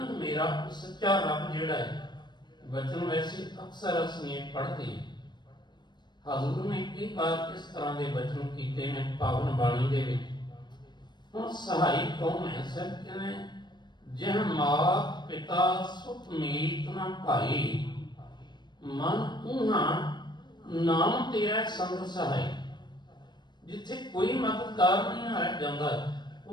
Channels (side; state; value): right; late; 0.21 ms